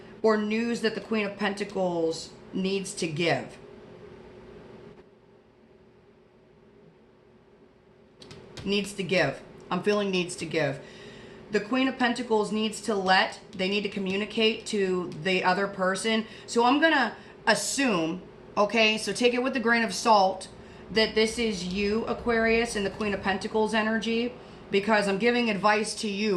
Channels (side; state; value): both; identical; correlation 1.00